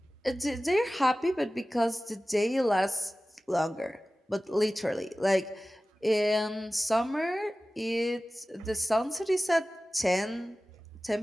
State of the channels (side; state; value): both; normal; correlation 0.96